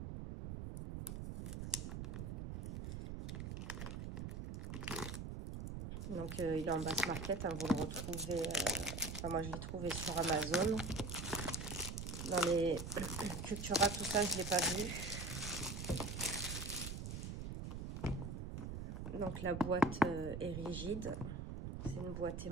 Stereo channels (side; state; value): right; noise; rumble, 6 dB below the sound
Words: Donc il est en basse market, hein, vous le retrouvez, enfin moi je l'ai trouvé sur Amazon. Dans les Cultura, tout ça, je ne l'ai pas vu. Donc la boîte est rigide, c'est une boîte